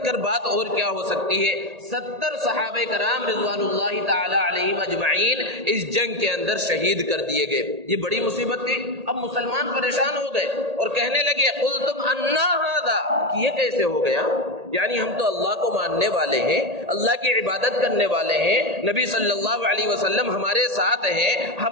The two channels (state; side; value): late; left; 1.8 ms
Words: کر بات اور کیا ہو سکتی ہے، 70 صحابہ کرام رضوان اللہ تعالی علیہم اجمعین اس جنگ کے اندر شہید کر دیے گئے۔ یہ بڑی مصیبت تھی۔ اب مسلمان پریشان ہو گئے اور کہنے لگے قلتم انا ھذا، کہ یہ کیسے ہو گیا، یعنی ہم تو اللہ کو ماننے والے ہیں، اللہ کی عبادت کرنے والے ہیں، نبی صلی اللہ علیہ وسلم ہمارے ساتھ ہیں،